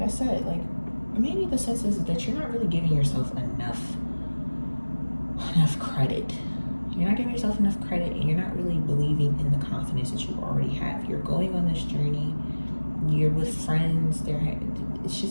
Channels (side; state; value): both; inverted; correlation -1.00